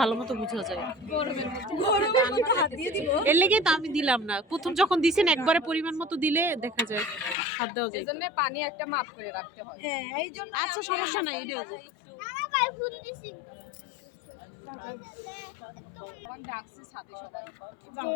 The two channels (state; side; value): drops out; right; at 7.4 s